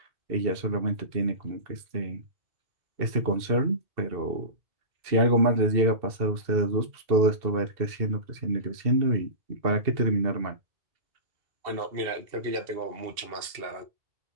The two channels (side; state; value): left; late; 2.7 ms